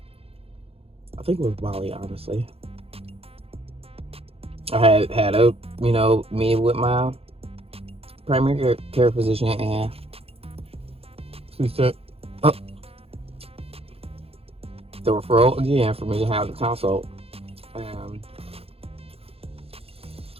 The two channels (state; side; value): late; left; 0.28 ms